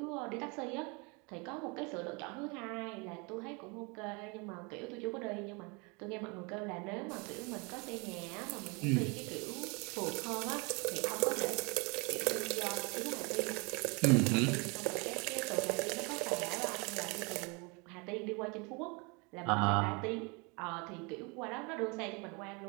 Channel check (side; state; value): left; quieter; 30.0 dB